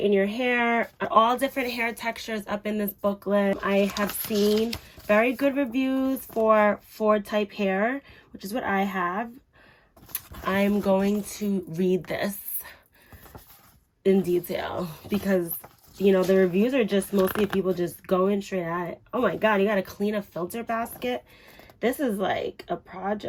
your hair. All different hair textures up in this booklet. I have seen very good reviews for Ford type hair, which is what I have. I'm going to read this in detail because, you know, the reviews are just mostly people just going straight at it. Oh my God, you got to clean a filter basket. This is like a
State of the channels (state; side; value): identical; both; correlation 1.00